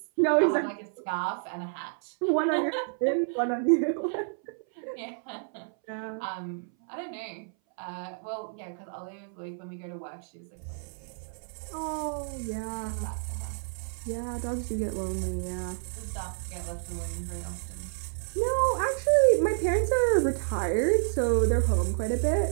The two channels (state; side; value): silent; left; 58 dB below the other